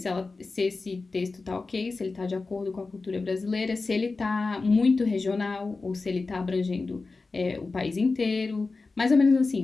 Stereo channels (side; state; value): right; quieter; 3.8 dB